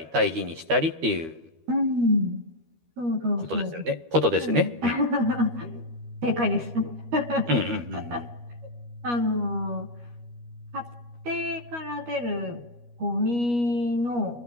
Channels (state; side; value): late; left; 13 ms